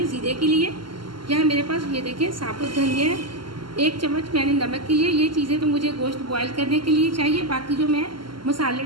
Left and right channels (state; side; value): late; left; 0.72 ms